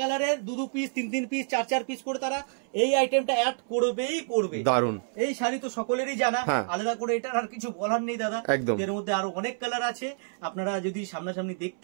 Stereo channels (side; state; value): left; silent; 59 dB below the other